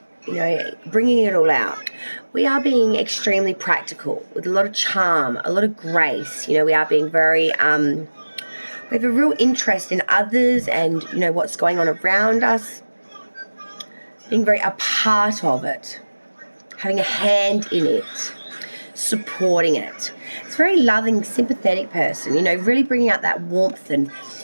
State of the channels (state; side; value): inverted; both; correlation -1.00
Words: it all out. We are being extremely practical with a lot of charm, a lot of grace. We are being very, we have a real interest in others and, what's going on around us. Being very a part of it. Having a hand in it. Supporting it. It's a very loving, sympathetic person, really bringing out that warmth and